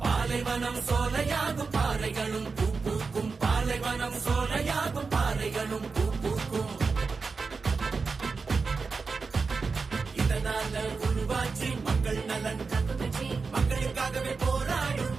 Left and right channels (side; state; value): left; quieter; 4.6 dB